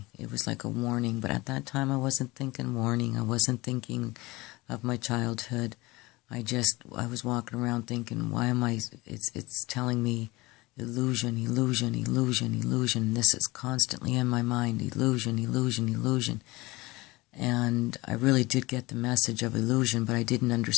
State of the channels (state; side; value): quieter; right; 21.6 dB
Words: It was like a warning, but at that time I wasn't thinking warning. I wasn't thinking of my childhood. I was walking around thinking, why am I, it's telling me illusion, illusion, illusion, illusion. This is constantly in my mind, illusion, illusion, illusion. And I really did get the message of illusion, but I didn't